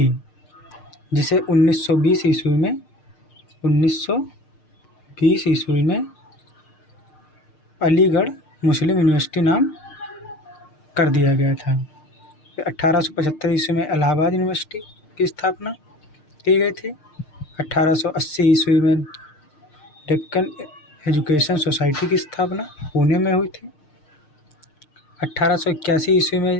जिसे 1920 ईस्वी में अलीगढ़ मुस्लिम यूनिवर्सिटी नाम कर दिया गया था। फिर 1875 ईस्वी में इलाहाबाद यूनिवर्सिटी की स्थापना की गई थी। 1880 ईस्वी में डेक्कन एजुकेशन सोसाइटी की स्थापना पुणे में हुई थी। 1881 ईस्वी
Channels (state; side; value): late; right; 6.6 ms